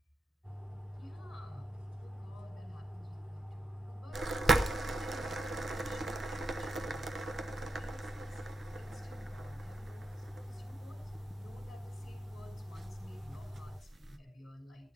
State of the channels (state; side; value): normal; both; correlation 0.86